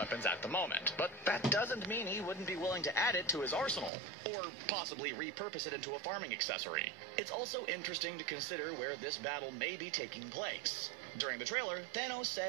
at the moment, but that doesn't mean he wouldn't be willing to add it to his arsenal, or possibly repurpose it into a farming accessory. It's also interesting to consider where this battle may be taking place. During the trailer, Thanos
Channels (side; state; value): left; drops out; at 3.9 s